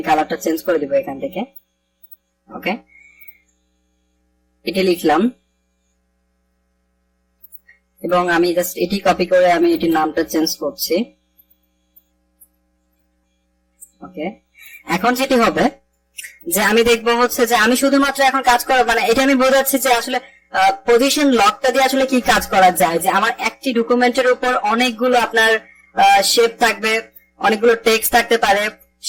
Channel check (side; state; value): both; identical; correlation 1.00